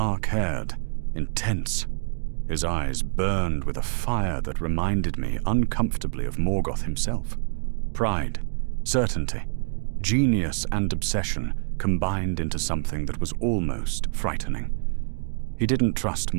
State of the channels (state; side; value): silent; left; digital silence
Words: intense. His eyes burned with a fire that reminded me uncomfortably of Morgoth himself. Pride, certainty, genius and obsession combined into something that was almost frightening. He didn't trust